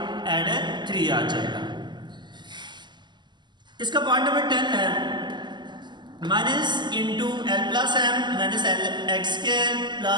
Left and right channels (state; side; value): late; left; 0.21 ms